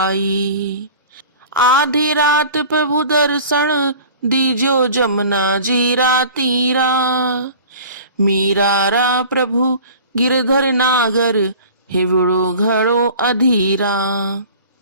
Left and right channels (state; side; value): inverted; both; correlation -0.43